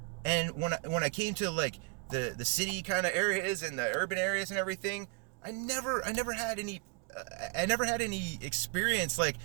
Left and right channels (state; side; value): quieter; left; 32.8 dB